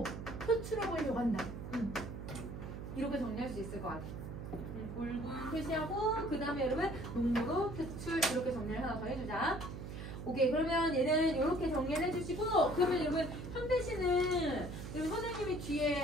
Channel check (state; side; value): noise; right; hum, 8 dB below the sound